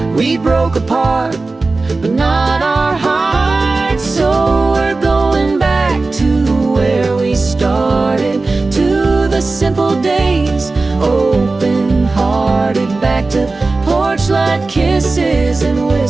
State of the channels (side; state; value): left; quieter; 3.5 dB